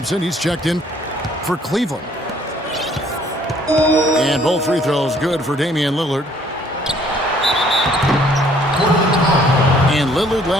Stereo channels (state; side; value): normal; both; correlation 0.61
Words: he's checked in for Cleveland. And both free throws good for Damian Lillard. And Lillard